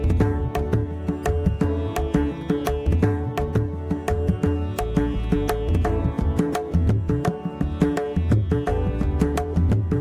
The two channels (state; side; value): identical; both; correlation 1.00